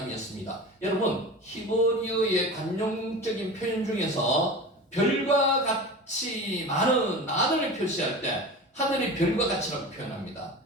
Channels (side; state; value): both; normal; correlation 0.32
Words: 여러분, 히브리어의 관용적인 표현 중에서 별과 같이 많은을 표시할 때 하늘이 별과 같이라고 표현합니다.